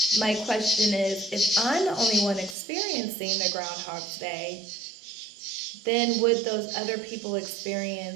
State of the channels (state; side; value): drops out; left; at 2.6 s